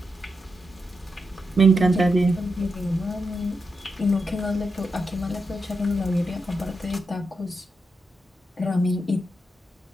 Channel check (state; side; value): normal; both; correlation 0.86